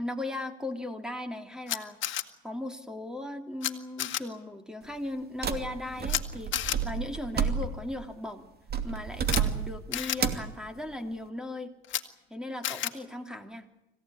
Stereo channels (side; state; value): both; normal; correlation 0.33